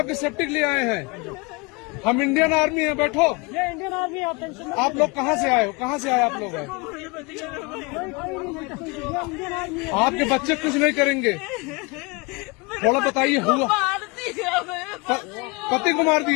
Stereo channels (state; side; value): quieter; right; 27.7 dB